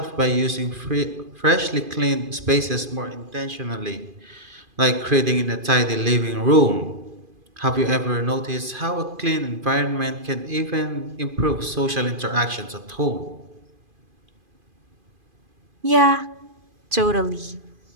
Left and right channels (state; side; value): late; left; 2.5 ms